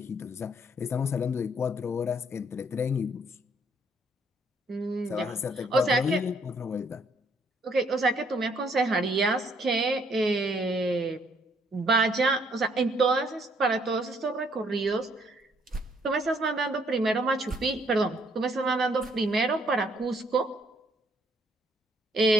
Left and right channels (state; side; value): normal; both; correlation 0.67